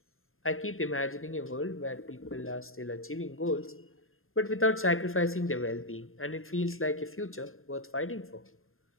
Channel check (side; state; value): right; late; 0.60 ms